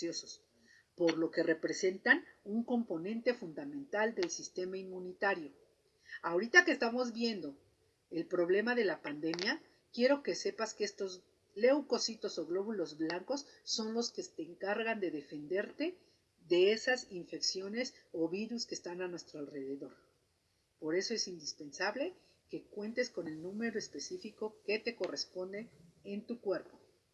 por lo que representan un componente fundamental del sistema inmunitario. Ahorita que estamos viendo el problema de la pandemia, quiero que sepas que estos leucocitos o glóbulos blancos son los que te encargan de defenderte de esas infecciones o virus que están a nuestro alrededor. Por eso es indispensable que cuentes con el número específico que te corresponde en tu cuerpo.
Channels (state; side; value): identical; both; correlation 1.00